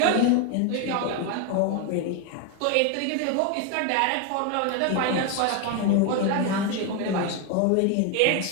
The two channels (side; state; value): both; different; correlation 0.01